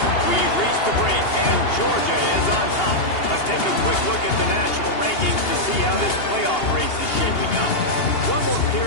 We've reached the break, and Georgia is on top. Let's take a quick look at the national rankings to see how this playoff race is shaping up. One more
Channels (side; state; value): right; late; 2.8 ms